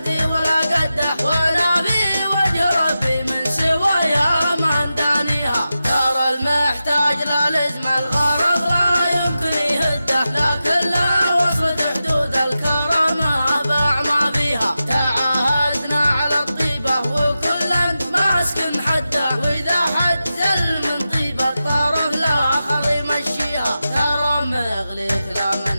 ولا قده، وانا في وجه ربي من سوايا ما ندانيها. ترى المحتاج لا لزم الغرض لا يمكن يهده، لكن لا وصلت حدود الكرامه باع ما فيها. تعاهدنا على الطيبه وكلا ماسك حده، واذا حد زل من طيبه الطرف الاخر يمشيها. ترى مغليك لا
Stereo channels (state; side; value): inverted; both; correlation -0.92